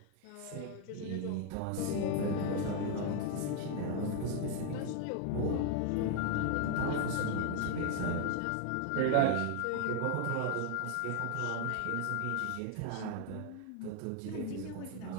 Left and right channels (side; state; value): both; different; correlation 0.00